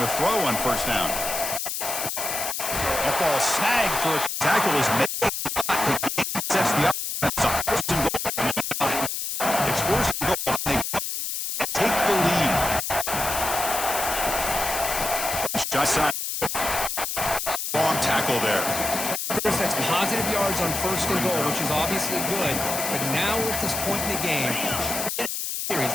throw on first down. That ball snagged for a tackle is made. Sets the offense up. First and goal. It's first and goal. They take the lead. Shot side. Wrong tackle there. Chris, that's positive yards on first and goal, which is obviously good. But now we're at this point in the game.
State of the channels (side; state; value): left; noise; hiss, 3 dB below the sound